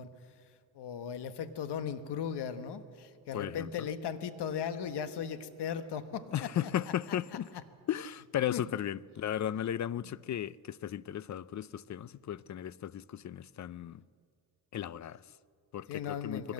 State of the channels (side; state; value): right; quieter; 9.2 dB